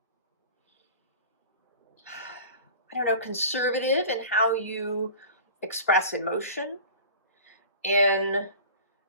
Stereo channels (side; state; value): both; inverted; correlation -0.39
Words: I don't know, conservative in how you express emotion.